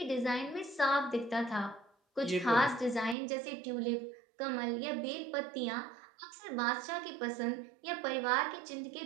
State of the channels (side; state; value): left; drops out; at 3.2 s